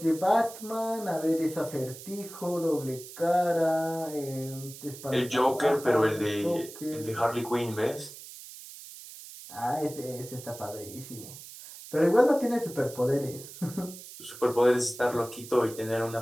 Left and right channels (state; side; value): noise; right; hiss, 15 dB below the sound